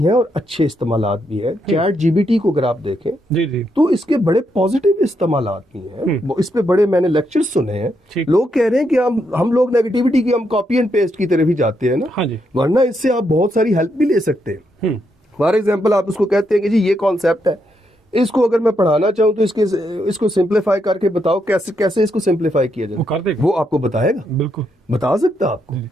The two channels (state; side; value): normal; both; correlation 0.79